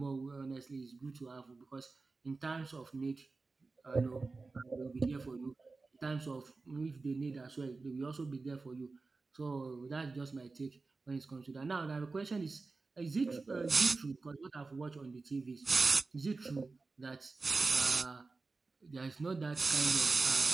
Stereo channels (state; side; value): quieter; left; 3.8 dB